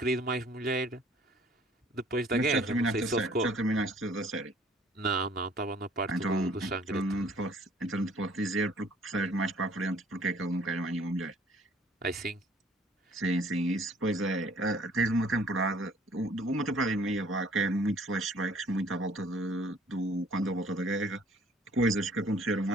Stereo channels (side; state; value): both; normal; correlation 0.56